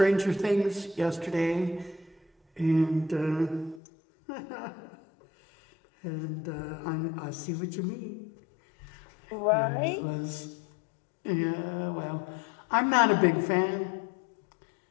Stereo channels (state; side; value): drops out; right; at 3.8 s